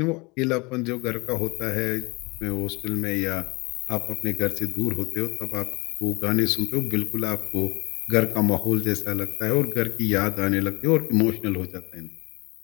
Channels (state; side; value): quieter; right; 27.2 dB